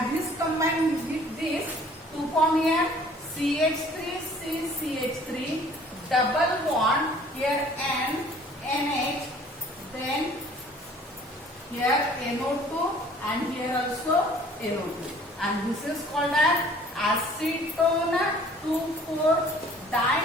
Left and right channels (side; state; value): both; normal; correlation 0.53